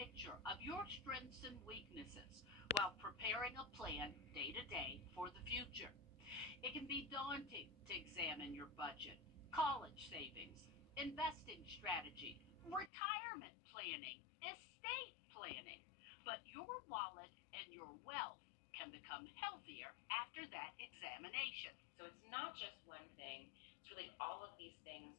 of your strengths and weaknesses while preparing a plan day to day for the future. It can be daunting to examine your budget, college savings, investing strategy, retirement planning, estate planning, but your wallet and your wealth can become healthier after that examination. So it's not just one thing, it's really all of these things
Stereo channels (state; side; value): drops out; right; at 12.9 s